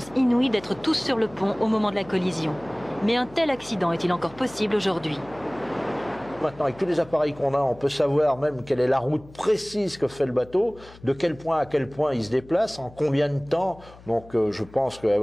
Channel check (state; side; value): noise; left; hum, 21 dB below the sound